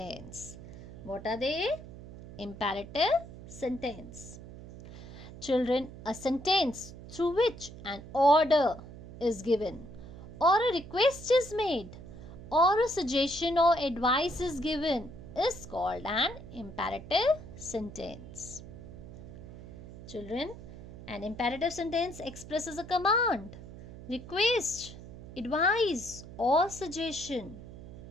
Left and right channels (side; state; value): right; noise; hum, 14 dB below the sound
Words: What are they? Imperative sentence. Children, a sentence through which an order is given, or a request is made, or a suggestion or advice is given is called an imperative sentence. Children, an imperative sentence expresses a command, request, advice or suggestion.